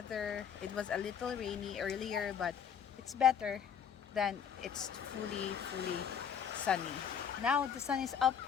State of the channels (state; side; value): quieter; right; 7.8 dB